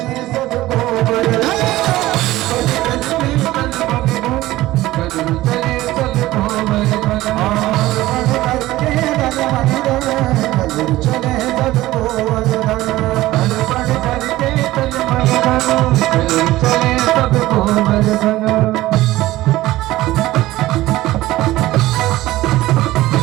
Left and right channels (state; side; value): quieter; left; 16.8 dB